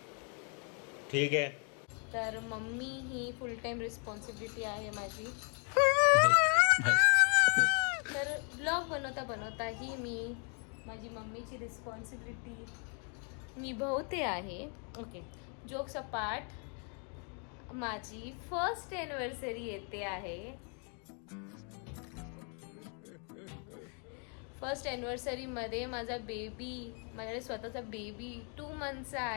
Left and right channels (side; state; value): right; quieter; 39.4 dB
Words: ठीक आहे. तर मम्मी ही फुल टाईम रिस्पॉन्सिबिलिटी आहे माझी. तर ब्लॉग बनवता बनवताही मी माझी मम्मीची रिस्पॉन्सिबिलिटी निभवते आहे. ओके, जोक्स अपार्ट, माझी फर्स्ट ॲनिव्हर्सरी येते आहे. फर्स्ट ॲनिव्हर्सरीमध्ये माझा माझ्याकडे स्वतःचा बेबी 2 मंथचा